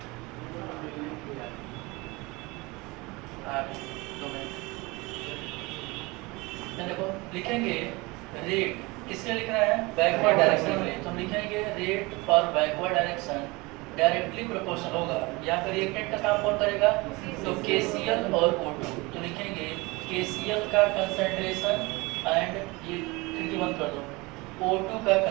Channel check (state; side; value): quieter; left; 24.1 dB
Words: देखो, लिखेंगे रेट किसके लिख रहा है, बैकवर्ड डायरेक्शन के लिए। तो हम लिखेंगे rate for backward direction directly proportional होगा, यहाँ पर रिएक्टेंट का काम कौन करेगा, तो KCl और O2। तो लिखेंगे KCl का कंसंट्रेशन एंड ये खिड़की बंद कर दो, O2 का